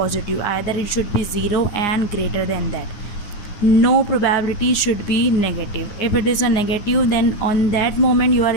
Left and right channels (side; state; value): right; late; 9.8 ms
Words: Either it should be 0 and greater than that. No probability should be negative. If it is a negative, then on that moment you are